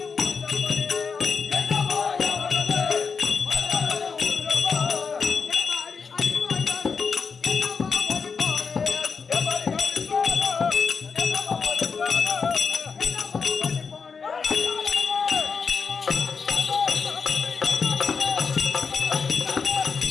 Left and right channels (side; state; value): right; quieter; 5.4 dB